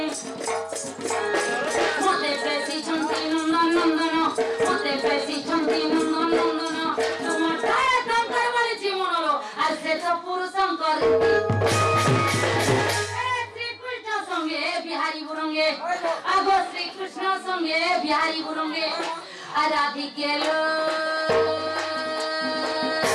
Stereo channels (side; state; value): both; identical; correlation 1.00